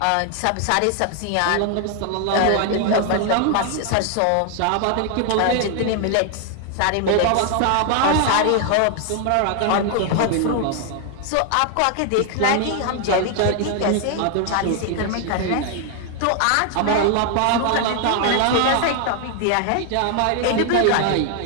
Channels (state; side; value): different; both; correlation 0.00